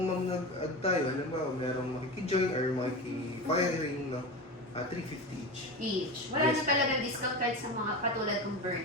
nag-add tayo, alam ba, merong makikijoin or makiki-firing, no? 350 each. Each. Wala Yes. na talagang discount kahit sa mga katulad ng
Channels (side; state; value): both; normal; correlation 0.25